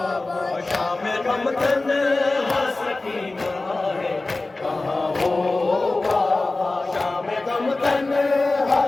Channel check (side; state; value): right; quieter; 3.2 dB